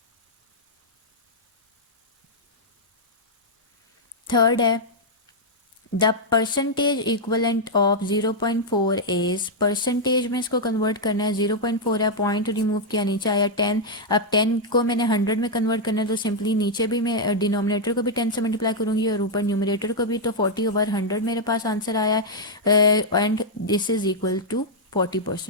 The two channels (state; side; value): normal; both; correlation -0.04